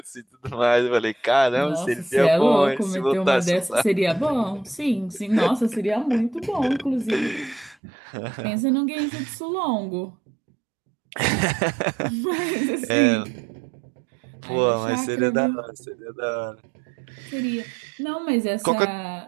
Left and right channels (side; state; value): left; drops out; at 7.8 s